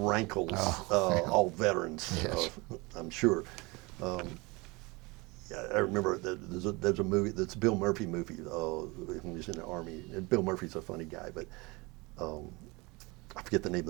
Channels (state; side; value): quieter; left; 25.3 dB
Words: all veterans, yes. I'm sure. I remember there's a movie, that's a Bill Murphy movie, when he was in the Army. And Bill Murphy's a funny guy, but I forget the name